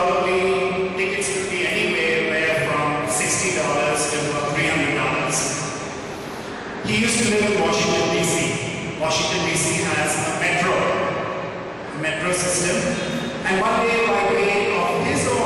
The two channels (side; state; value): both; identical; correlation 1.00